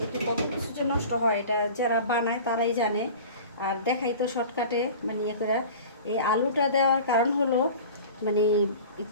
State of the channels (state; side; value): inverted; both; correlation -0.39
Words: এতে কত কিছু যে নষ্ট হয় এটা যারা বানায় তারাই জানে। আর দেখাই তো শর্টকাটে মানে ইয়ে করে। এই আলুটা দেওয়ার কারণ হলো মানে